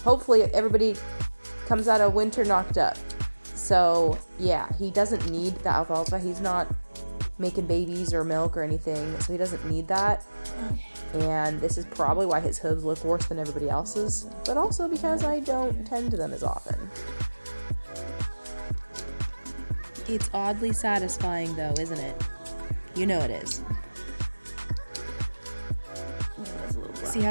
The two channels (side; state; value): both; inverted; correlation -1.00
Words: hopefully everybody comes out of winter knocked up. So yeah, he doesn't need the alfalfa. He's not making babies or milk or anything, so he doesn't need that. And this is probably why his hooves look worse than everybody else's, but also because I don't tend to them as often. It's oddly satisfying though, isn't it? You know it is. See